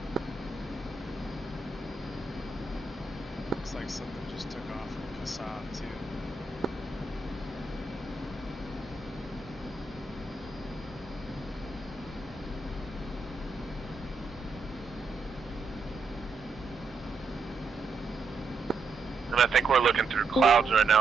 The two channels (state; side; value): quieter; left; 4.0 dB